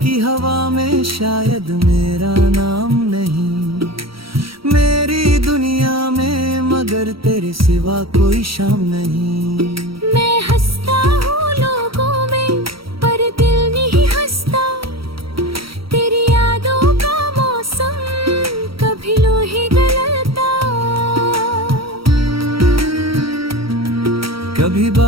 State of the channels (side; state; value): left; late; 0.75 ms